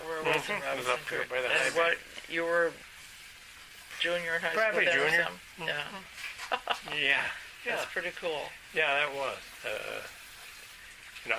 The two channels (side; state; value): both; identical; correlation 1.00